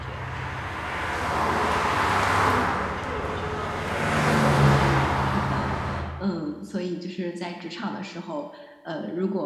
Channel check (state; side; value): identical; both; correlation 1.00